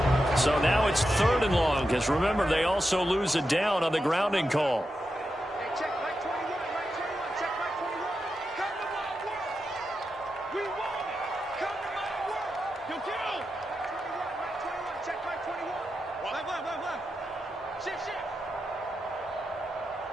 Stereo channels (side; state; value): both; normal; correlation 0.88